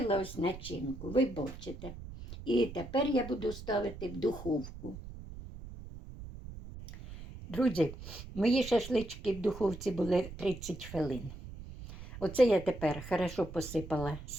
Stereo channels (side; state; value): right; noise; rumble, 12 dB below the sound